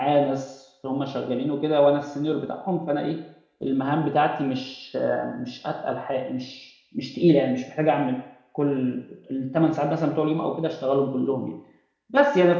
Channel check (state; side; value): identical; both; correlation 1.00